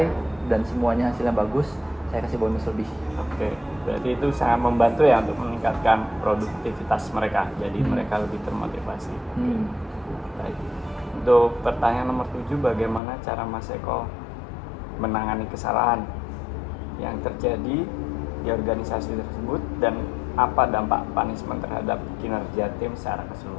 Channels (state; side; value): drops out; right; at 13.0 s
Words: dan semuanya hasilnya bagus, saya kasih bonus lebih. Berarti itu sangat membantu ya untuk meningkatkan produktivitas mereka. Jadi mereka lebih termotivasi. Baik. Untuk pertanyaan nomor 7, bagaimana cara Mas Eko menangani kesalahan yang terjadi di organisasi tersebut dan apa dampak punishment terhadap kinerja tim secara